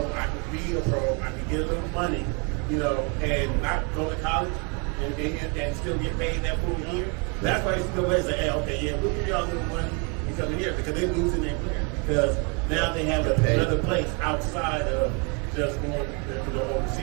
I can be a pro, I can get a little money, you know, and not go to college and still get paid that full year. That's why NCAA say, hey, okay, yeah, we'll give y'all a little money to come in here because they're losing their player because now they have another place outside of just going to the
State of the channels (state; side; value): quieter; left; 34.3 dB